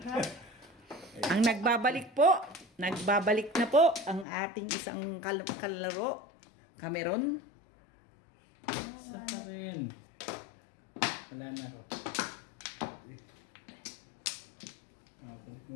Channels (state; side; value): drops out; right; at 4.2 s